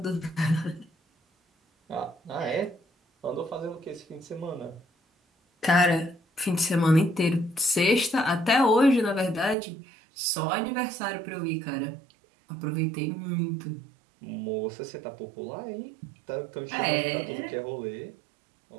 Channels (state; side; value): drops out; left; at 9.6 s